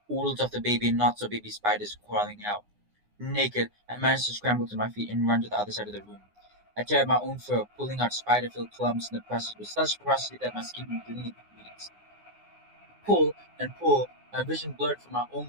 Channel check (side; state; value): left; late; 9.7 ms